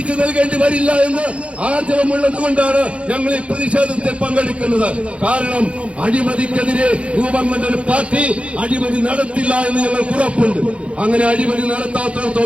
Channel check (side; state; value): left; late; 0.061 ms